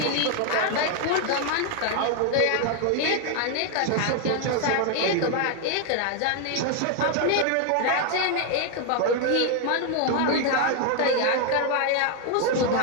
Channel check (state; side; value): different; both; correlation 0.01